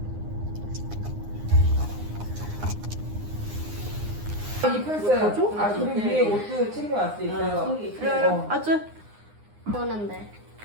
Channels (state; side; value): late; left; 9.7 ms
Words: 이 플스. 아, 그리고 위에 옷도 챙겨왔어. 있어요. 그래. 아주. 오는데.